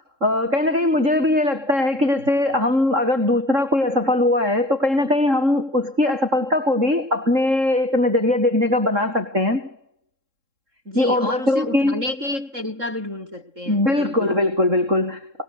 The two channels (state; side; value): late; left; 3.7 ms